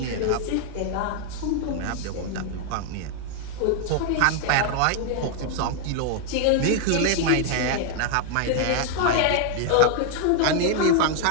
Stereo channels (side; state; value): both; different; correlation 0.00